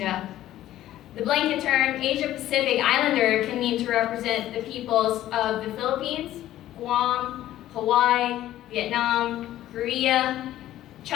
The blanket term Asia-Pacific Islander can mean to represent the peoples of the Philippines, Guam, Hawaii, Vietnam, Korea,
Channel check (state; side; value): quieter; right; 13.6 dB